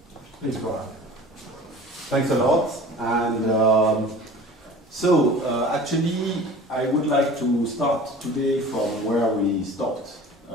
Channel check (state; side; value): normal; both; correlation 0.42